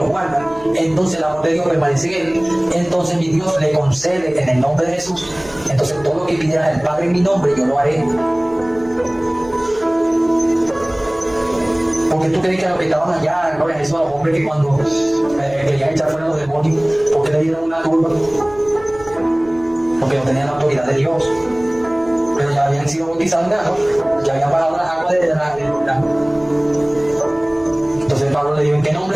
guarda. Entonces el amor de Dios permanece en él. Entonces mi Dios le concede en el nombre de Jesús. Entonces todo lo que pidieras al Padre en mi nombre, yo lo haré. Porque tú crees que a los que estaban allá, gloria a Jesús, a los hombres que cuando querían echar fuera los demonios, porque le dieron una turba, porque no tenían la autoridad de Dios, pero ya habían sido bautizados en agua, ya habían bajado las aguas de la. Entonces Pablo le dijo, ¿en qué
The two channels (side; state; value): right; noise; hum, 21 dB below the sound